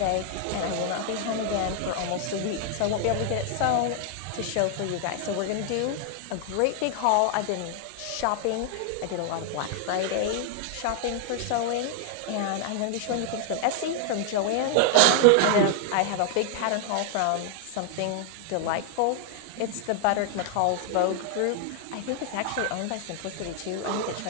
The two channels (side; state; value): both; different; correlation 0.00